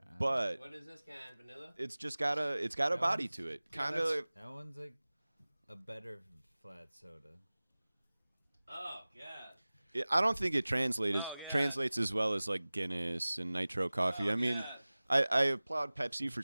but What is this kind? Vanilla? it's just got a body to it. Kind of. That one's like a better flat soda. Oh god. I don't think it translates Oh, yeah. translates as well as like Guinness and Nitro Coffee. Oh, I mean, God. I applaud Pepsi for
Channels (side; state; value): both; inverted; correlation -0.99